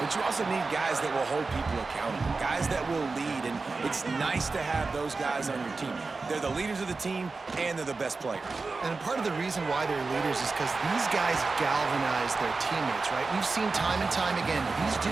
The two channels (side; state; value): left; quieter; 4.0 dB